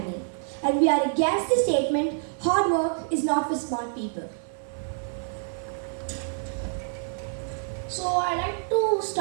and we are against the statement hard work is not for smart people. So I like to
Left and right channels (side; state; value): left; silent; digital silence